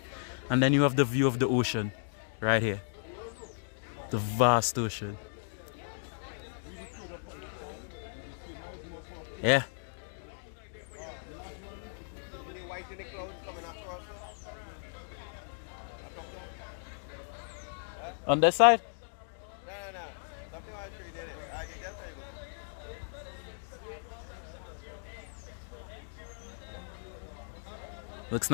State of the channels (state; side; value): silent; right; digital silence